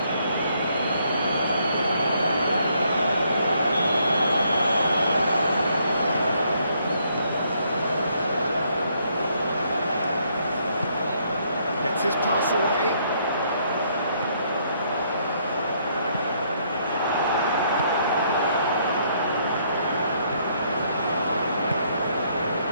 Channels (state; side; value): inverted; both; correlation -0.70